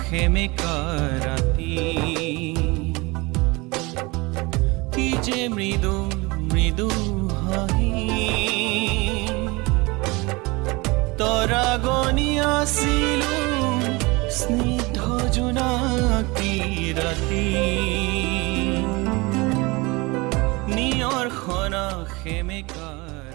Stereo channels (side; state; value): left; quieter; 24.7 dB